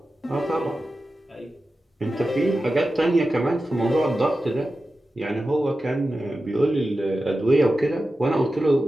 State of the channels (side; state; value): both; normal; correlation 0.93